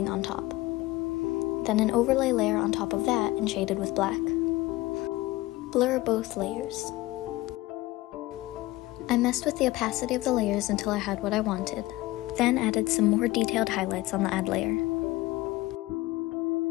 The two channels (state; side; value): quieter; right; 18.8 dB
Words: on top. Then an overlay layer on top of that and shaded with black. Blur both layers. I messed with the opacity of the layers until I had what I wanted, then added some more detailed highlights on the add layer.